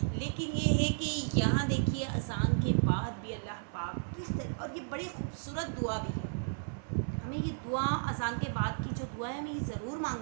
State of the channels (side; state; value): left; silent; digital silence